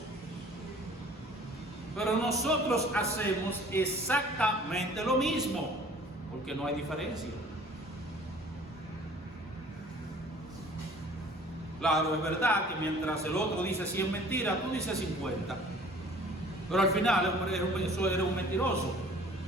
Pero nosotros hacemos exactamente lo mismo, porque no hay diferencia. Claro, es verdad que mientras el otro dice 100 mentiras, tú dices 50. Pero al final eso eres un mentiroso.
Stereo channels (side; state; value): both; normal; correlation 0.50